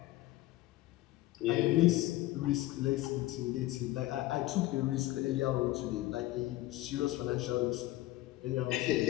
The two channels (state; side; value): quieter; right; 17.0 dB